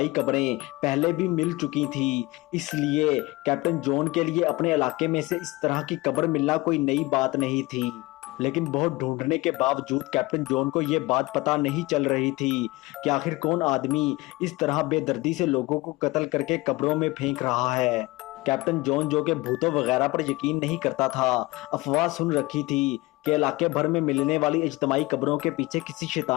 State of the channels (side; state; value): right; quieter; 21.6 dB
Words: कब्रें पहले भी मिल चुकी थी, इसलिए कैप्टन जॉन के लिए अपने इलाके में से इस तरह की कब्र मिलना कोई नई बात नहीं थी। लेकिन बहुत ढूंढने के बावजूद कैप्टन जॉन को यह बात पता नहीं चल रही थी कि आखिर कौन आदमी इस तरह बेदर्दी से लोगों को कत्ल करके कब्रों में फेंक रहा है। कैप्टन जॉन, जो कि भूतों वगैरह पर यकीन नहीं करता था, अफवाह सुन रखी थी कि इलाके भर में मिलने वाली इज्तमाही कब्रों के पीछे किसी